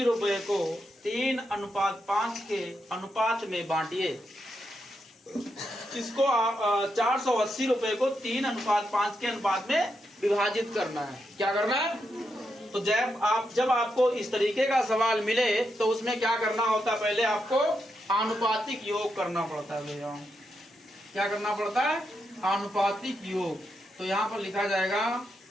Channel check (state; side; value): normal; both; correlation 0.83